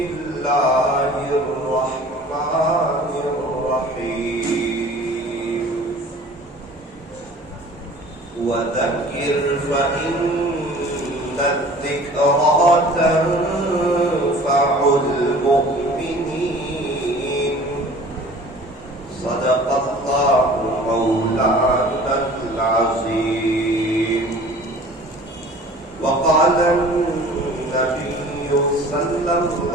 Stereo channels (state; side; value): normal; both; correlation 0.46